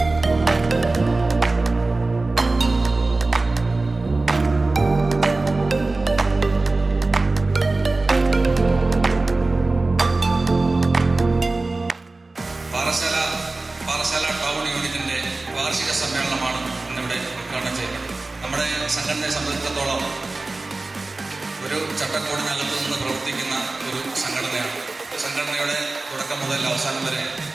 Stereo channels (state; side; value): quieter; left; 3.3 dB